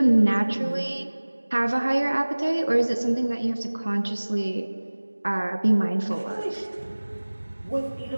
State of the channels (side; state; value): both; inverted; correlation -1.00